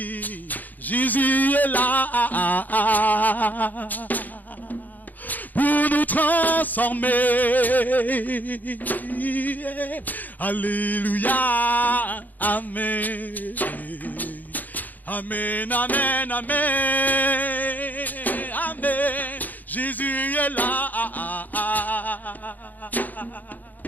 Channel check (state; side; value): late; right; 0.083 ms